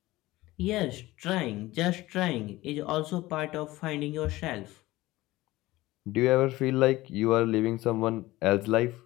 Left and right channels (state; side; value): quieter; right; 18.3 dB